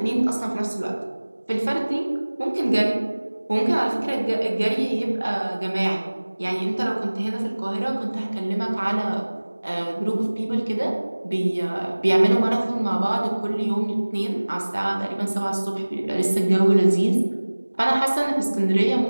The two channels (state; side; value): inverted; both; correlation -1.00